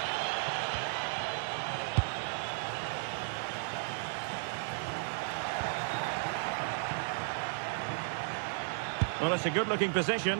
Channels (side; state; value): left; silent; digital silence